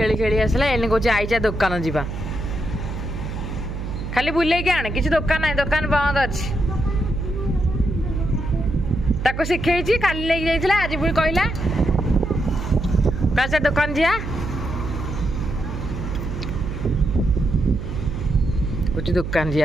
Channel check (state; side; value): noise; right; hum, 6 dB below the sound